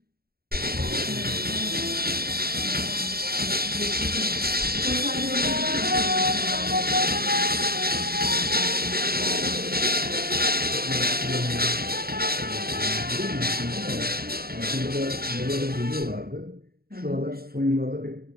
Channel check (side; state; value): left; late; 0.44 ms